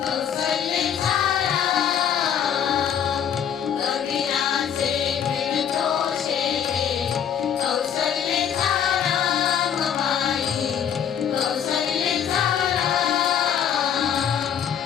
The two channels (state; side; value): quieter; right; 8.6 dB